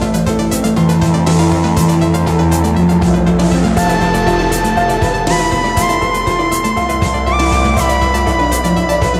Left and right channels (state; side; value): identical; both; correlation 1.00